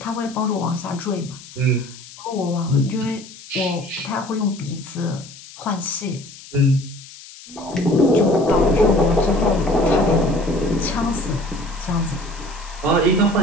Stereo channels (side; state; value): left; noise; hiss, 18 dB below the sound